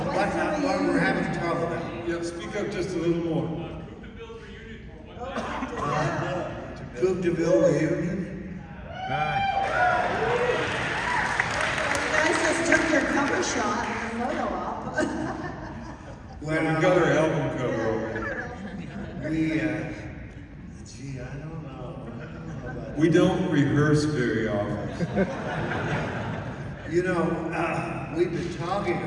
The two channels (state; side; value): identical; both; correlation 1.00